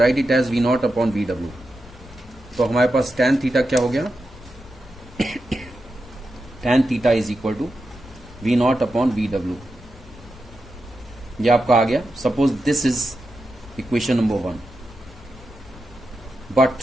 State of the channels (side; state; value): left; noise; rumble, 19 dB below the sound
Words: it as V0 upon VW. तो हमारे पास tan थीटा क्या हो गया, tan theta is equal to V0 upon VW. ये आपका आ गया. Suppose this is equation number 1. But